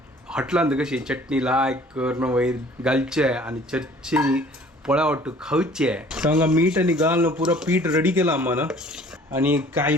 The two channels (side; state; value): both; normal; correlation 0.52